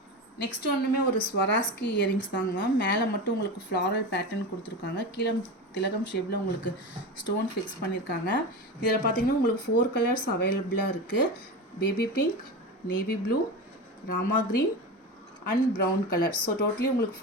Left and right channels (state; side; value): normal; both; correlation 0.24